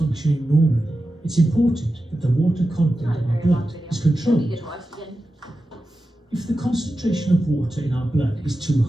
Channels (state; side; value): normal; both; correlation 0.92